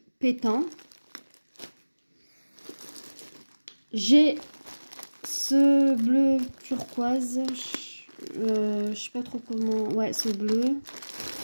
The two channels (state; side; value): inverted; both; correlation -1.00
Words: pétant. J'ai ce bleu turquoise. Je sais pas trop comment... Ouais, ce bleu.